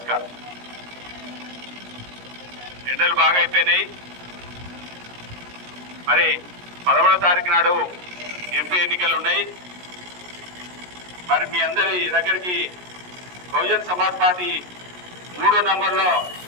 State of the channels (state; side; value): late; left; 17 ms